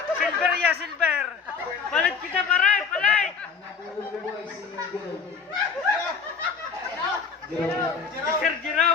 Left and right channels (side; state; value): right; quieter; 5.8 dB